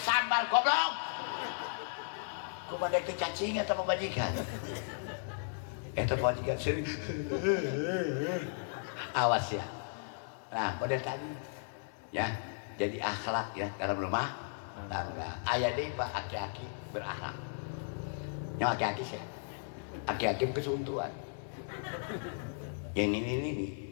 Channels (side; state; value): right; silent; digital silence